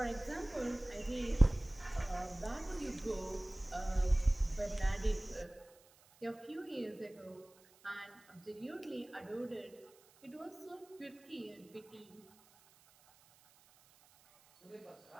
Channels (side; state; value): right; noise; hiss, 27 dB below the sound